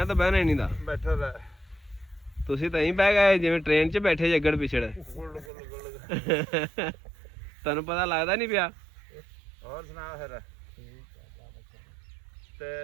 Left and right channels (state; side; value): drops out; left; at 5.5 s